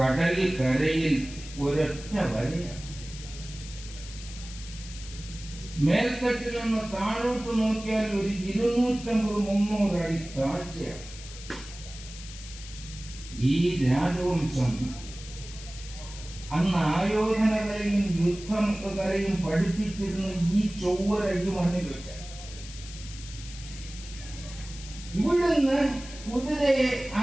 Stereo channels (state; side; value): noise; left; hiss, 14 dB below the sound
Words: കരയിൽ ഒരൊറ്റ വരയാണ്. മേൽത്തട്ടിൽ നിന്ന് താഴോട്ട് നോക്കിയാൽ ഒരു 250-300 അടി താഴ്ചയാണ്. ഈ രാജവംശം അന്ന് ആയോധന കലയും യുദ്ധകലയും പഠിപ്പിച്ചിരുന്ന ഈ ചൊവ്വര ഈ മണ്ണിൽ വെച്ച ഇവിടുന്ന് കുതിരയെ ആ